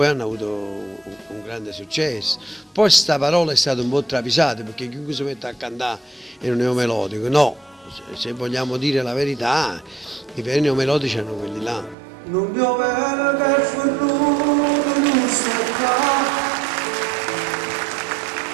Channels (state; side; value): drops out; left; at 12.0 s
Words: hanno avuto un grande successo. Poi sta parola è stata un po' travisata, perché chiunque si mette a cantare in un neomelodico, no, se vogliamo dire la verità, i veri neomelodici erano quelli là. non piovere che ferruto non sta